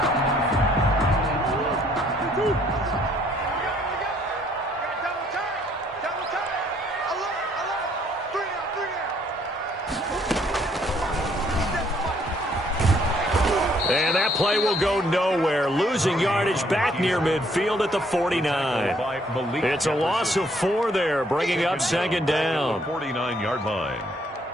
And that play will go nowhere. Losing yardage back near midfield at the 49. It's a loss of 4 there, bringing up 2nd down. 49-yard line.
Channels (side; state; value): both; normal; correlation 0.65